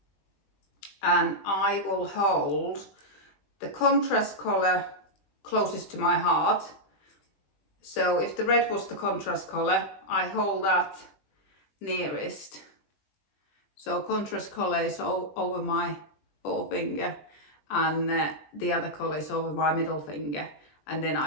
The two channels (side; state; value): right; late; 20 ms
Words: and I will hold the contrast colour closest to my heart. So if the red was the contrast colour, I hold that nearest. So contrast colour is over my forefinger, and the other colour is over my middle finger, and then